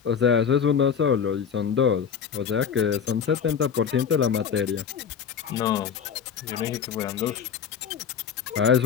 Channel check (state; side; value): quieter; right; 7.2 dB